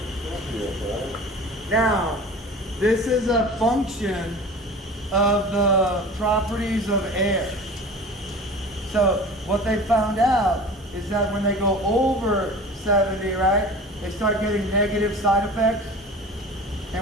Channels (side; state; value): both; normal; correlation 0.38